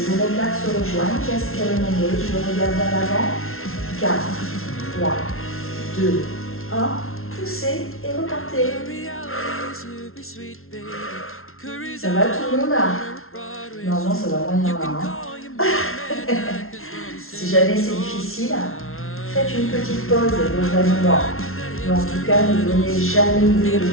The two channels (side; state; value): right; late; 0.62 ms